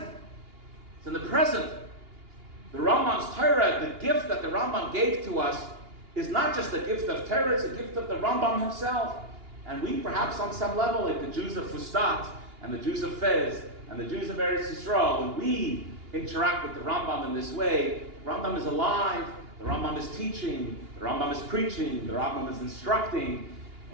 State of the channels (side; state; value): left; late; 2.8 ms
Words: It's in the present. The Rambam's Torah, the gift that the Rambam gave to us, is not just a gift of Torah, it's a gift of the Rambam himself. And we, perhaps on some level, like the Jews of Fustat, and the Jews of Fez, and the Jews of Eretz Yisrael, when we interact with the Rambam in this way, the Rambam is alive, the Rambam is teaching, the Rambam is preaching, the Rambam is instructing,